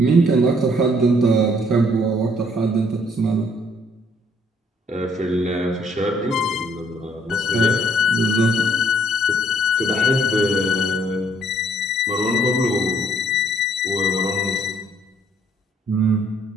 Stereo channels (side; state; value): both; normal; correlation 0.64